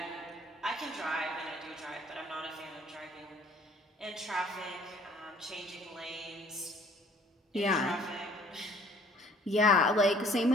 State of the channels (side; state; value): both; normal; correlation 0.56